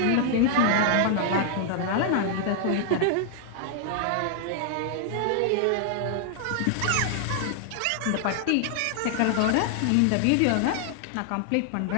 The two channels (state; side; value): different; both; correlation -0.01